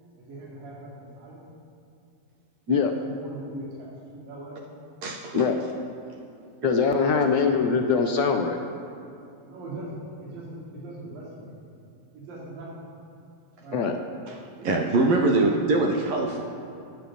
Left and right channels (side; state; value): left; late; 11 ms